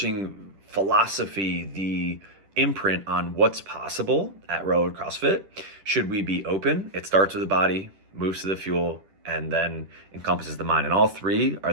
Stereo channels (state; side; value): late; left; 10 ms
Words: philosophy, the imprint on what's possible at Road CrossFit. Should we be open? It starts with the body, moves to the fuel, and then encompasses the mind. And all three are